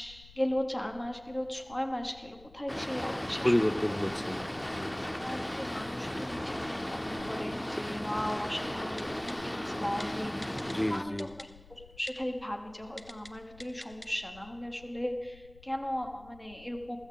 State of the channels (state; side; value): noise; left; rumble, 20 dB below the sound